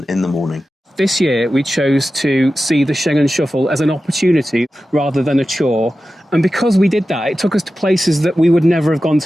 in the morning. This year, we chose to see the Schengen Shuffle as an opportunity rather than a chore. And because we did that, it took us to places that we would never have gone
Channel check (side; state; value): both; normal; correlation 0.93